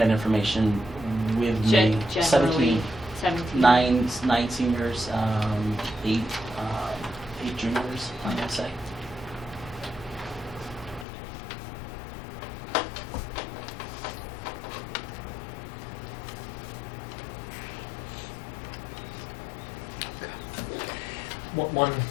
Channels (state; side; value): drops out; right; at 11.1 s